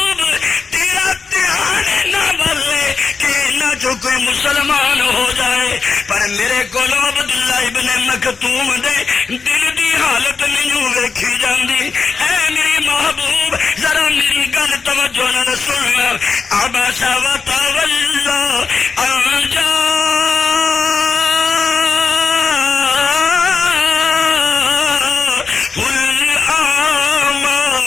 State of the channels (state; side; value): quieter; right; 5.0 dB